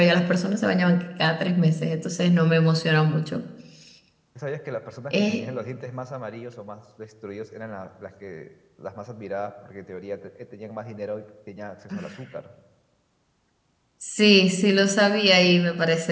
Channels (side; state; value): both; identical; correlation 1.00